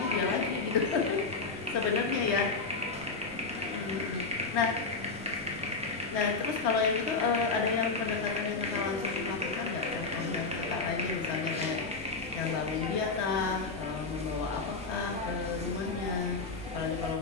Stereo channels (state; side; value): quieter; right; 4.1 dB